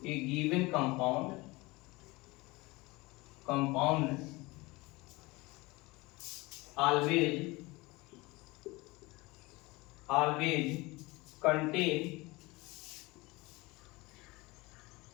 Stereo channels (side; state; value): right; quieter; 22.9 dB